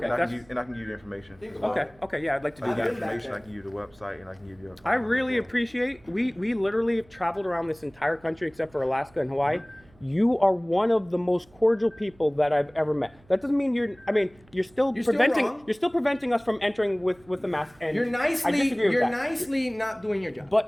And I that's- can give you the information. Think as about well. it. Okay, yeah, I'd like to do I can give you that. the information, back I can give you the website, and I can give you a. I really appreciate, we literally have traveled around this entire country except for Alaska and Hawaii. You are one of the most cordial people that I've ever met. That doesn't mean you're still You're still preventing, wrong. you're still preventing us from entering with the mask. And You're I disagree with you're that. nicely not doing your job.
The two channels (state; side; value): noise; right; hum, 28 dB below the sound